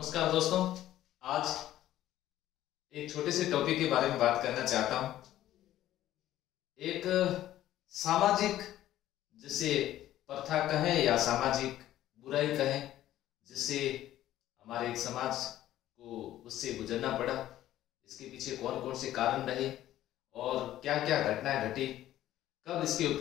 नमस्कार दोस्तों। आज एक छोटे से टॉपिक के बारे में बात करना चाहता हूं। एक सामाजिक जिसे प्रथा कहें या सामाजिक बुराई कहें, जिससे हमारे एक समाज को उससे गुजरना पड़ा। इसके पीछे कौन कौन से कारण रहे और क्या क्या घटनाएं घटी, कब इसके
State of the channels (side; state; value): right; quieter; 13.4 dB